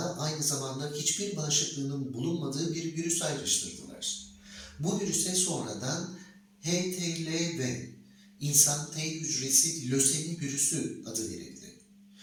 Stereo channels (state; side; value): identical; both; correlation 1.00